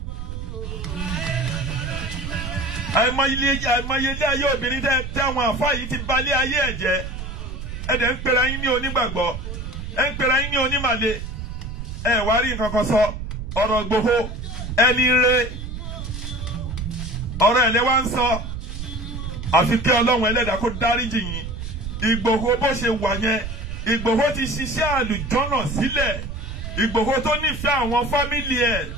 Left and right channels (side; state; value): right; noise; rumble, 7 dB below the sound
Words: Àìmọye ilé ayé obìnrin tẹ́ àwọn àfáà yìí ti balẹ̀ ayé ẹ̀ jẹ́. Ẹ̀dẹ̀ ń pera yín ní onígbàgbọ́. Ẹ ń pera yín ní onímàle. Ẹ wá rí nǹkan kan sọ. Ọ̀rọ̀ Ìgbòho ẹni rẹ, ọ̀rọ̀ ẹ̀lẹ́ wá ń sọ. Àfi kí Ọlọ́run ẹlẹ́dàá kó dáríjì yín. Ìgbòho bó ṣe wà yẹn, Ìgbòho ti ṣiṣẹ́ àlùjọ́nà sílẹ̀. Ìgbòho tó nífẹ̀ẹ́ àwọn fámìlì ẹ̀,